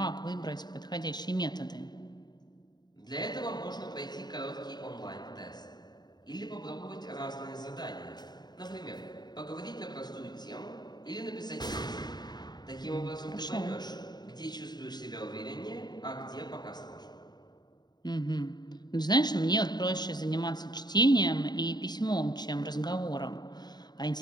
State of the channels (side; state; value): right; late; 0.20 ms